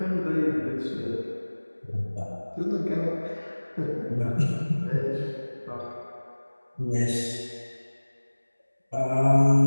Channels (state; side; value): inverted; both; correlation -1.00